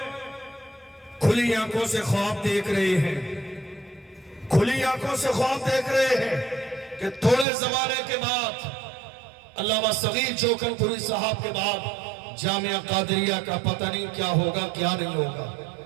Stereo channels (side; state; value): left; drops out; at 7.5 s